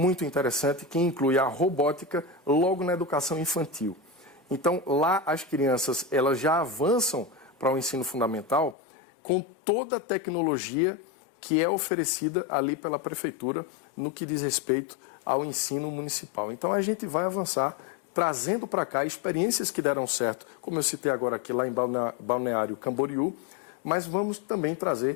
interessante, que inclui a robótica logo na educação infantil. Então, lá as crianças elas já avançam para o ensino fundamental com toda a tecnologia que é oferecida ali pela prefeitura no que diz respeito ao ensino municipal. Então, a gente vai avançar trazendo para cá experiências que deram certo, como eu citei agora aqui lá em Balneário Camboriú, mas vamos também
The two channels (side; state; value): right; drops out; at 8.8 s